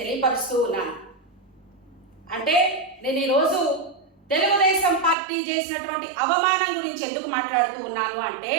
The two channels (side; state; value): left; drops out; at 5.2 s